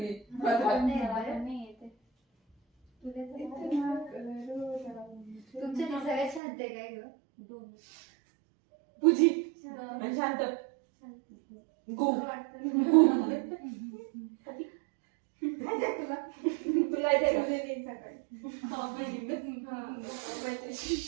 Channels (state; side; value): drops out; left; at 6.4 s